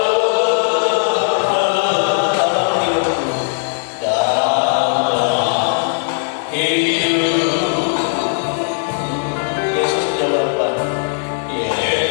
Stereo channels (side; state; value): right; silent; 60 dB below the other